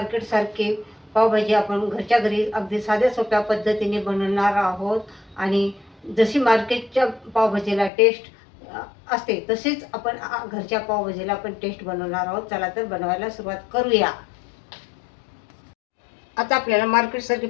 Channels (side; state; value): right; drops out; at 7.9 s